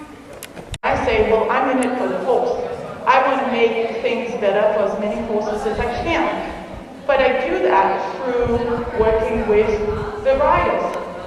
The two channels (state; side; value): identical; both; correlation 1.00